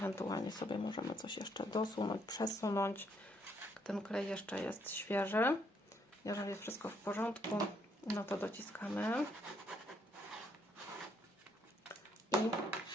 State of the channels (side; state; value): both; normal; correlation 0.71